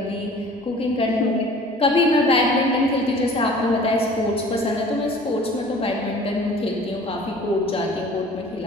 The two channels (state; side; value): normal; both; correlation 0.47